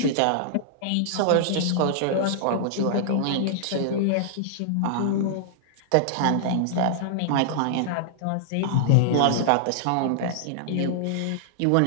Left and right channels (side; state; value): both; different; correlation -0.01